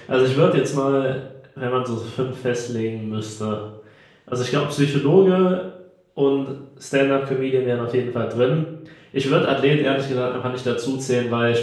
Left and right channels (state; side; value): identical; both; correlation 1.00